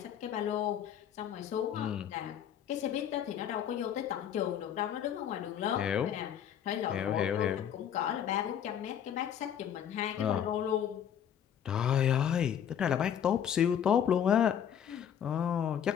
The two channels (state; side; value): quieter; right; 9.2 dB